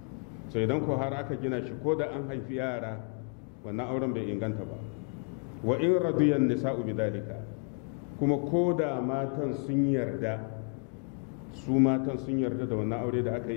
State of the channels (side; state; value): right; quieter; 39.4 dB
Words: sai idan ko har aka gina shi ko da an haifi yara, wannan auren bai inganta ba. Wa in radiyan nisa'u bidalika, kuma ko da matan sun yarda, su matan sun yarda da wannan aure da aka